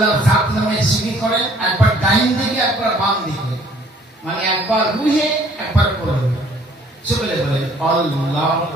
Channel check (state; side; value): normal; both; correlation 0.58